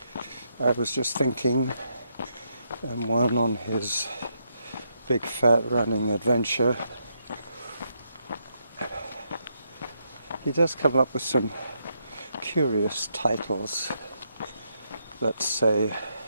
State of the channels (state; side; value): inverted; both; correlation -0.78